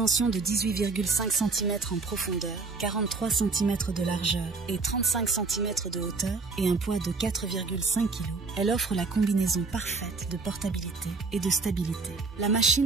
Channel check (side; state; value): left; quieter; 4.1 dB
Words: de 18,5 cm en profondeur, 43 cm de largeur et 35 cm de hauteur et un poids de 4,5 kg, elle offre la combinaison parfaite de portabilité et de stabilité. La